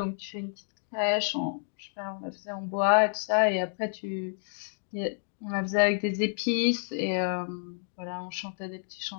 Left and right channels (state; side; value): silent; right; digital silence